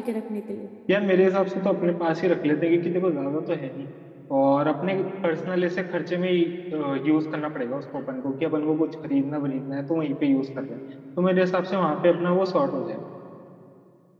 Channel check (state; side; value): identical; both; correlation 1.00